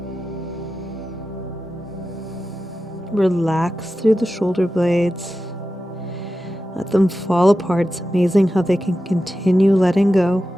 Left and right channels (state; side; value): normal; both; correlation 0.92